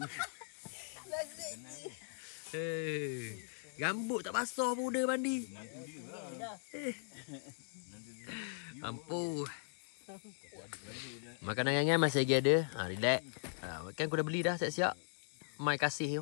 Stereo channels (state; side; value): silent; right; digital silence